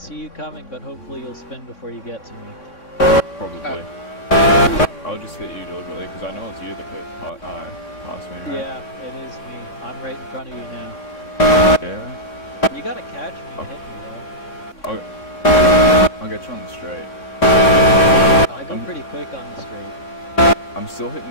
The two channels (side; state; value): right; late; 3.6 ms